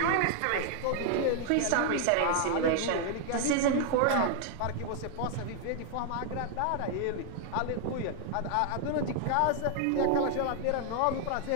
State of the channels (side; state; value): both; different; correlation 0.00